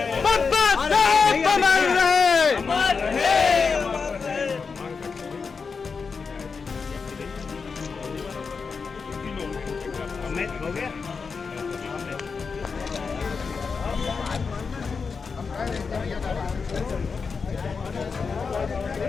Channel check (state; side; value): quieter; right; 5.2 dB